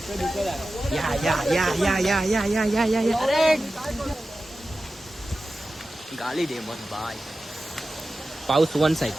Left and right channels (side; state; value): both; normal; correlation 0.94